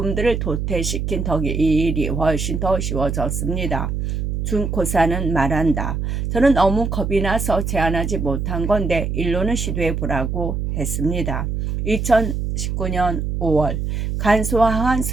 도태시킨 덕에 이 일이 훨씬 더 쉬워졌습니다. 준코사는 말한다. 저는 너무 겁이 나서 제안하지 못한 건데 일로는 시도해 보라고 했습니다. 2019년 5월 간소화한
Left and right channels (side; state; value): right; noise; hum, 2 dB below the sound